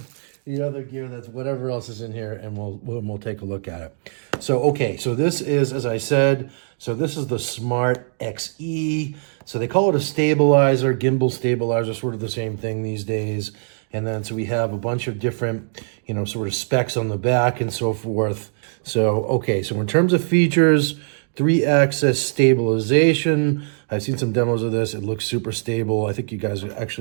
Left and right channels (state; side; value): silent; left; digital silence